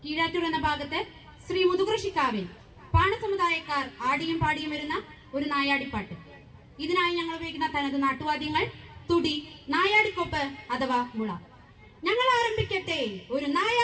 കീഴാറ്റൂർ എന്ന ഭാഗത്ത് ശ്രീ മുതുകൃഷിക്കാവിൽ പാണസമുദായക്കാർ ആടിയും പാടിയും വരുന്ന ഒരു നായാടിപ്പാട്ട്. ഇതിനായി ഞങ്ങൾ ഉപയോഗിക്കുന്ന തനത് നാട്ടുവാദ്യങ്ങൾ തുടി, നായാടിക്കൊപ്പ് അഥവാ മുള. ഞങ്ങൾ ആരംഭിക്കട്ടെ ഒരു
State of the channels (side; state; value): both; identical; correlation 1.00